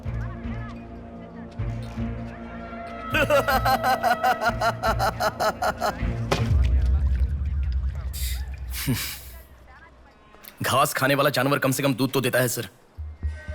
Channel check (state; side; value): identical; both; correlation 1.00